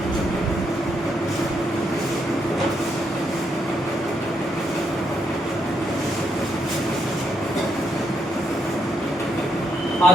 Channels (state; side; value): normal; both; correlation 0.78